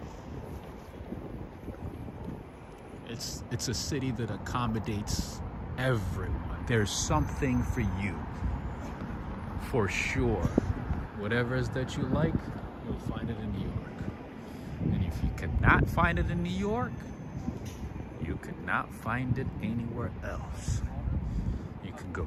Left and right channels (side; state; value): both; identical; correlation 1.00